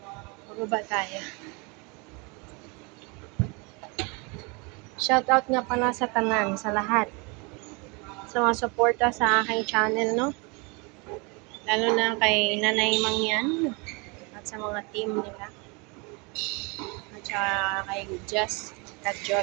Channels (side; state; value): left; quieter; 29.9 dB